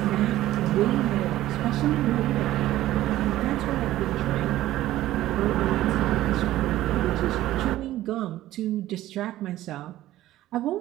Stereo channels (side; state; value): left; quieter; 14.7 dB